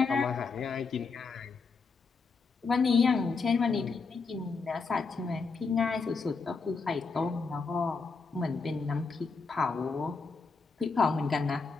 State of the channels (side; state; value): right; quieter; 4.6 dB